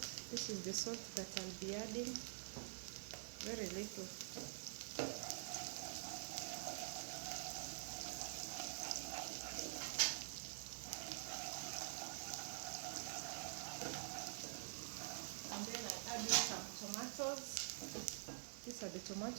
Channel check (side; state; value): left; silent; digital silence